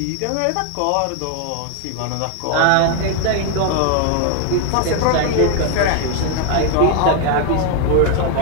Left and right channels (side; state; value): both; different; correlation 0.01